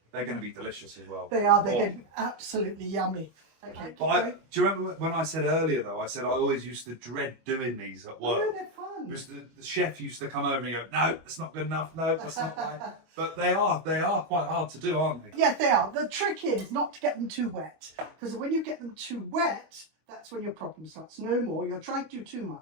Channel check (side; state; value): left; late; 25 ms